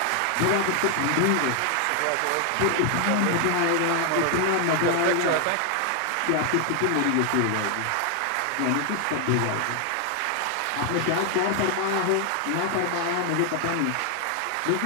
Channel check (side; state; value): both; different; correlation 0.00